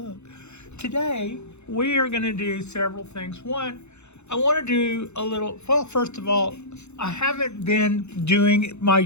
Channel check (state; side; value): late; right; 0.82 ms